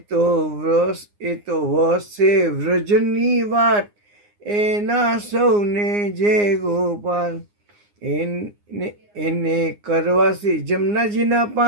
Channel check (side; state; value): left; late; 9.7 ms